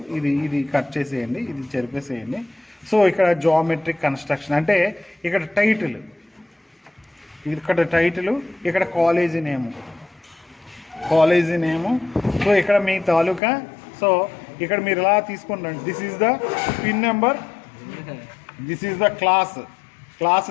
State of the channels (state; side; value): drops out; right; at 13.4 s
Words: ఇది కట్ చేసేయండి, ఇది చెరిపేసేయండి. సో ఇక్కడ జామెట్రిక్ కన్స్ట్రక్షన్ అంటే ఇక్కడ టైటిల్, ఇక్కడ కాలేజీ నేము. సో ఇక్కడ మీ తాలూకా. సో ఇక్కడ మీరు ఇలా తీసుకుంటారు, this is the pin number, this is the class